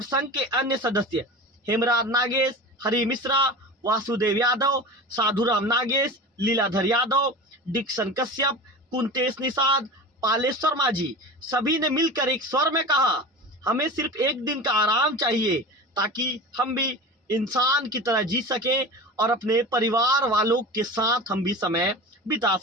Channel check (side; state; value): both; normal; correlation 0.32